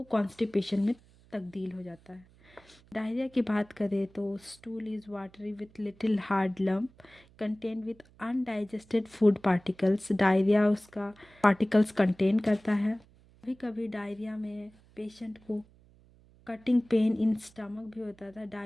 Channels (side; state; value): right; noise; hum, 28 dB below the sound